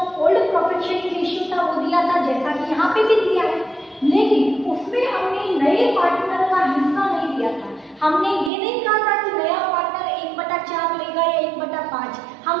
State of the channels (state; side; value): drops out; left; at 8.5 s